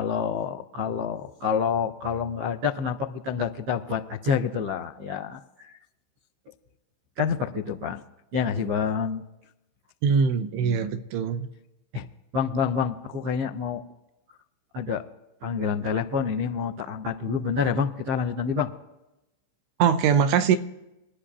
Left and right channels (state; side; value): late; left; 15 ms